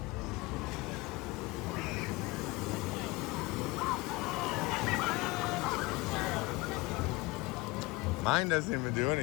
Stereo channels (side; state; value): right; quieter; 22.6 dB